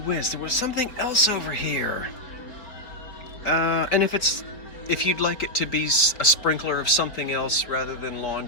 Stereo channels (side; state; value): right; late; 4.3 ms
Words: there was something else over here. And if you'd like it to be a sprinkler of something else rather than